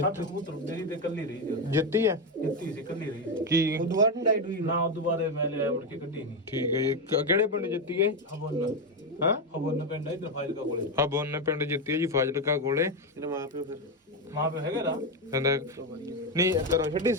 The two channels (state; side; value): normal; both; correlation 0.09